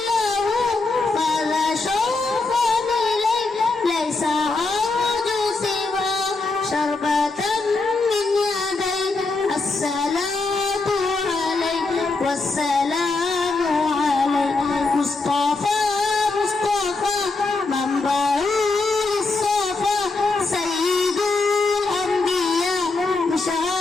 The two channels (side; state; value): right; quieter; 3.6 dB